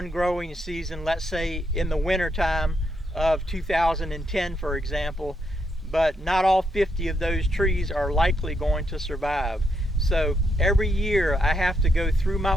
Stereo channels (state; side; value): normal; both; correlation 0.78